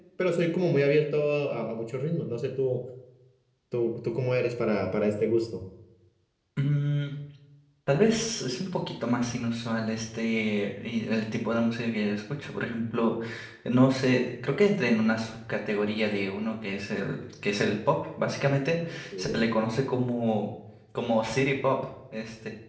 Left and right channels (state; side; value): identical; both; correlation 1.00